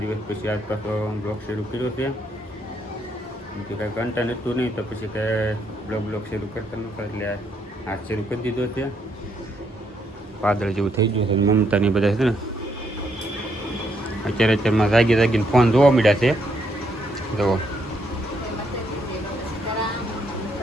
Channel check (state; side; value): normal; both; correlation 0.74